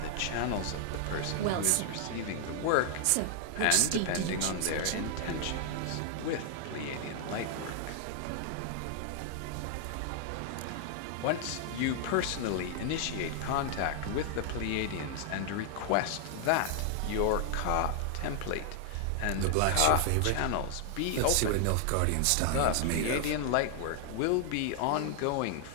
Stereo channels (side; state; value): both; different; correlation 0.00